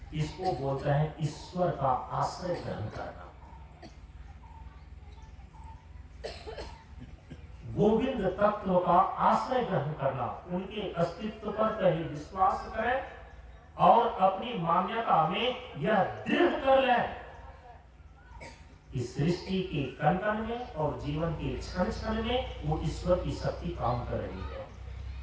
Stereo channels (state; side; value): identical; both; correlation 1.00